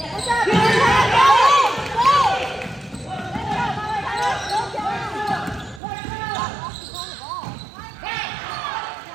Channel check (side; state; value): left; drops out; at 5.8 s